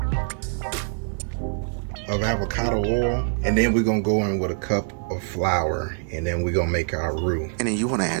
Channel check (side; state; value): left; silent; 62 dB below the other